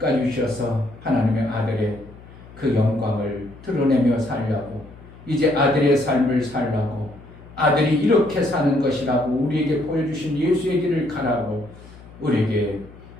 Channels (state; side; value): noise; left; hum, 20 dB below the sound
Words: 주셔서 하나님의 아들의 그 영광을 드러내며 살려고 이제 아들의 삶을 살라고 아들이 이렇게 사는 것이라고 우리에게 보여주신 예수의 길을 가라고 우리에게